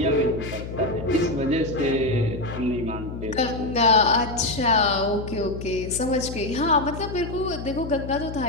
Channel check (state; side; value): noise; left; hum, 9 dB below the sound